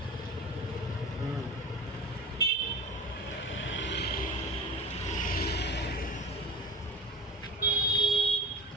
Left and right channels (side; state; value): both; normal; correlation 0.33